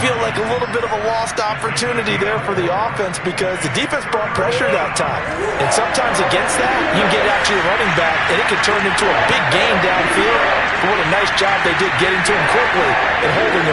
like a little bit of a lost opportunity there for the offense because the defense brought pressure that time. And sometimes against that, you can get actually a running back, and it can turn into a big gain downfield. But what a nice job they did getting to him quickly and holding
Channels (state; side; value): identical; both; correlation 1.00